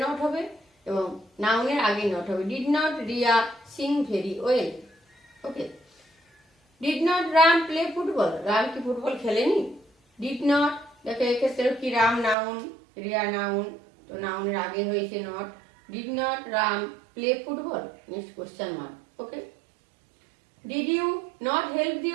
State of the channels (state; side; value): drops out; left; at 12.4 s